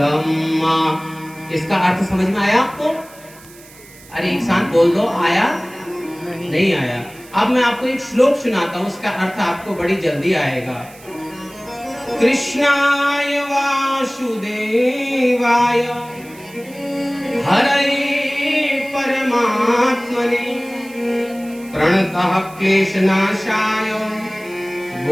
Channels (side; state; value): right; noise; hiss, 22 dB below the sound